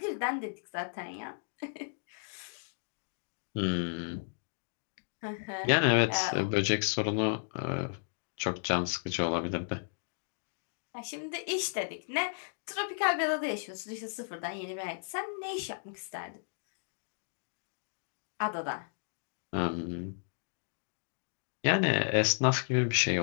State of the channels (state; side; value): silent; right; digital silence